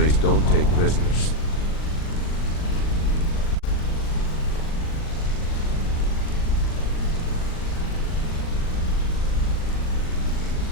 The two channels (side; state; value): right; late; 39 ms